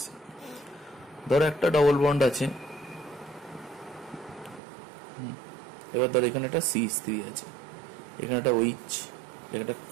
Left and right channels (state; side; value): drops out; left; at 4.6 s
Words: ধরো একটা ডবল বন্ড আছে, এবার ধরো এখানে একটা CH3 আছে, এখানে একটা OH, একটা